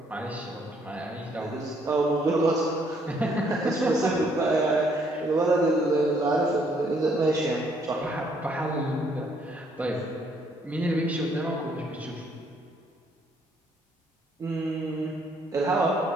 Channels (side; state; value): both; normal; correlation 0.68